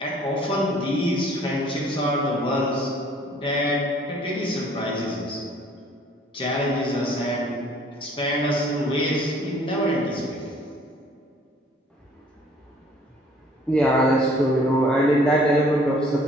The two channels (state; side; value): normal; both; correlation 0.56